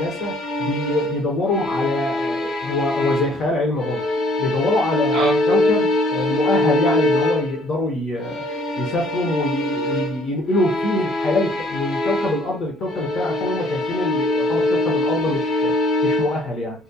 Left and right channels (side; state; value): both; normal; correlation 0.60